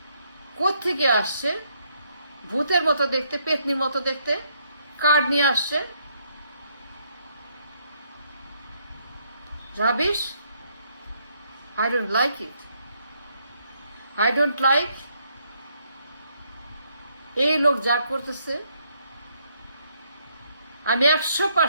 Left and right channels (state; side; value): inverted; both; correlation -0.72